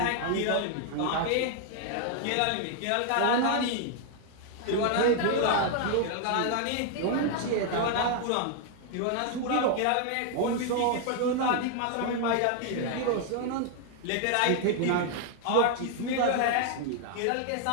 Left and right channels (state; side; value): different; both; correlation 0.00